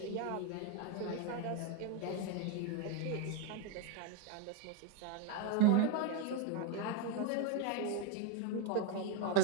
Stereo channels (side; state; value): both; different; correlation 0.02